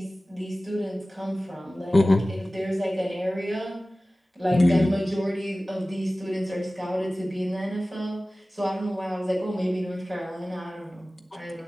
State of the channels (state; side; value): normal; both; correlation 0.97